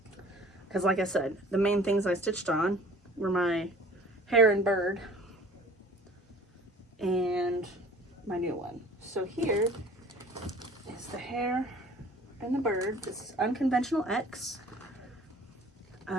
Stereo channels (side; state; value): both; normal; correlation 0.48